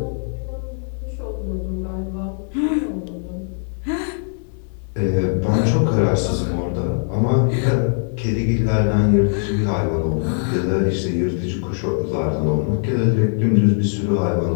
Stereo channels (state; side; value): silent; right; 63 dB below the other